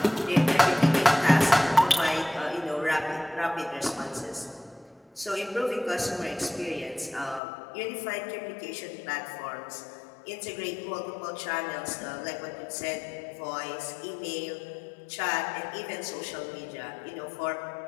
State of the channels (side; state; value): right; drops out; at 7.4 s